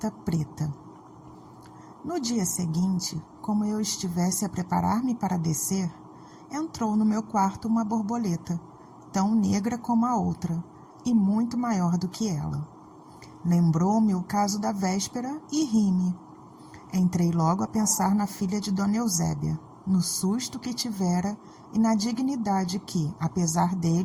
preta. No dia seguinte, como eu estivesse a preparar-me para descer, entrou no meu quarto uma borboleta, tão negra como a outra, e muito maior do que ela. Lembrou-me o caso da véspera e ri-me. Entrei logo a pensar na filha de Dona Eusébia, no susto que tivera e na dignidade que, apesar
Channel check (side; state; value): both; identical; correlation 1.00